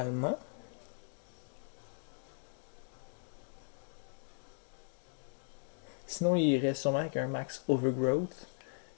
Sinon, il irait sûrement avec un max overgrowth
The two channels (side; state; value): right; silent; digital silence